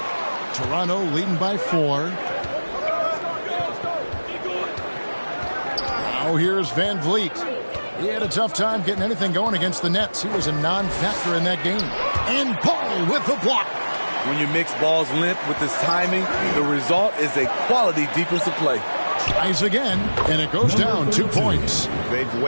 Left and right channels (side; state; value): both; inverted; correlation -1.00